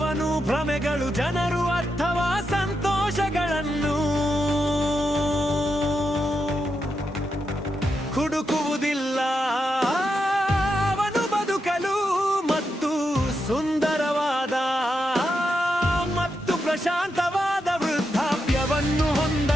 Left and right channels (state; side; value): normal; both; correlation 0.85